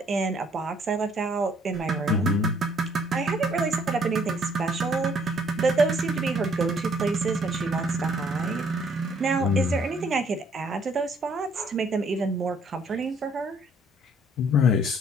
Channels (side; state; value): both; normal; correlation 0.64